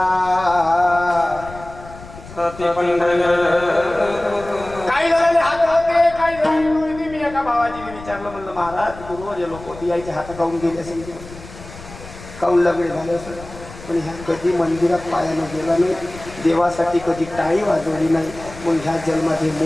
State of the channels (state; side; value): noise; left; rumble, 16 dB below the sound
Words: काही झालेले हात होते, काही झाले. मी एका भावाजीने विचारलं, म्हणलं महाराज गुरुवर जे लोक होती यायचे हात गाऊन गेले असेल, काऊन लग्न झाले असेल, पण ह्या कधी मंदिरात पायानं गेला नाही, देवासाठी कधी टाळी वाजवली नाही, मग ह्या जन्मात हे